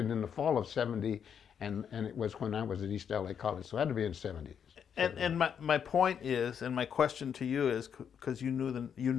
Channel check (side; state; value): right; quieter; 7.8 dB